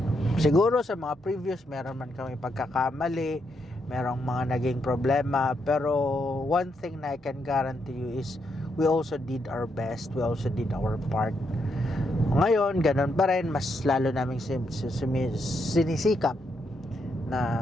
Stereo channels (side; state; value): both; normal; correlation 0.79